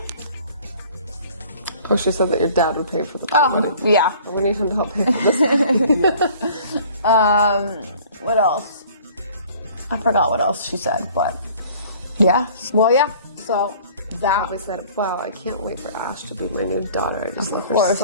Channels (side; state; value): both; inverted; correlation -0.51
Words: Oh, she said that your dad would pay for the wedding. Yeah. We need him to help pay for this. What else? I forgot what else she said, but yeah. Well, yeah. So that I said, wow, I can't wait for Ash to be my new daughter. I just love her course,